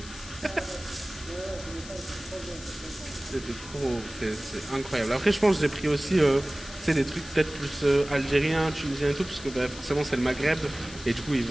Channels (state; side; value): noise; left; hiss, 15 dB below the sound